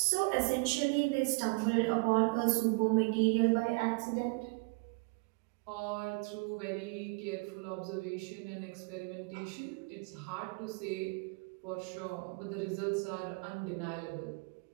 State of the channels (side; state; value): left; quieter; 29.6 dB